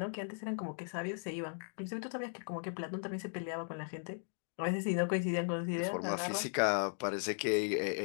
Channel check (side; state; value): right; silent; digital silence